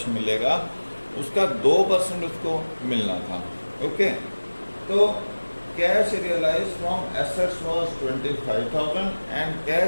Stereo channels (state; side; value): inverted; both; correlation -1.00